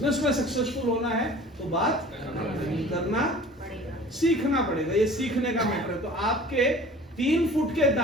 में सक्सेसफुल होना है तो बात करना सीखना पड़ेगा। ये सीखने का मैटर है। तो आपके 3 फुट के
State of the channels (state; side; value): normal; both; correlation 0.45